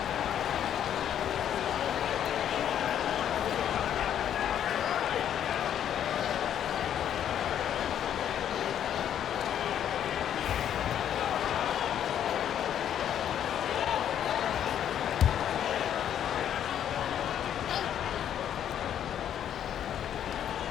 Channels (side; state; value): right; quieter; 9.9 dB